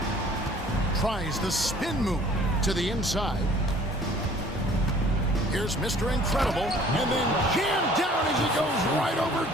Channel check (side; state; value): both; normal; correlation 0.53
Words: Tries the spin move to the inside. Here's Mr. Incredible, and then jammed down as he goes right over